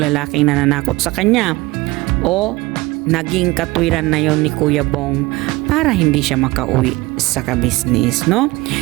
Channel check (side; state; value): left; quieter; 21.1 dB